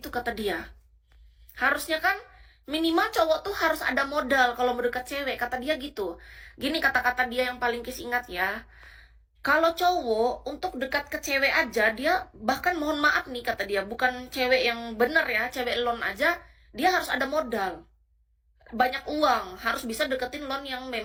kata dia. Harusnya kan minimal cowok tuh harus ada modal kalau mau deket cewek, kata dia gitu. Gini kata-kata dia yang paling Kis ingat ya. Kalau cowok untuk dekat ke cewek aja, dia bahkan mohon maaf nih kata dia, bukan cewek yang bener ya, cewek lon aja, dia harus ada modal. Banyak uang, harus bisa deketin lon yang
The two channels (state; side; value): identical; both; correlation 1.00